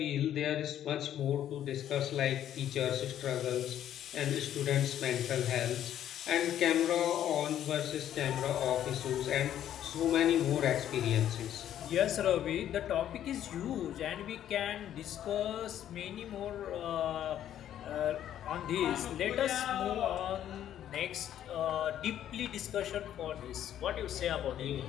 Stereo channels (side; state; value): right; quieter; 11.0 dB